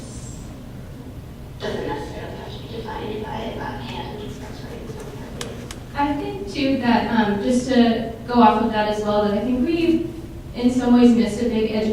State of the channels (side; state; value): both; identical; correlation 1.00